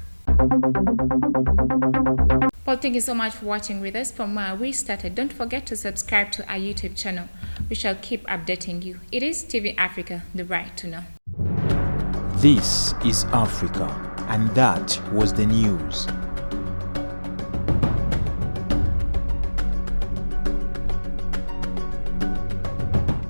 Well, thank you so much for watching with us from where we started. Don't forget to subscribe to our YouTube channel. We shall keep updating you. It is TV Africa, the right to know. This is Africa, and that was the news.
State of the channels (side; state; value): both; inverted; correlation -1.00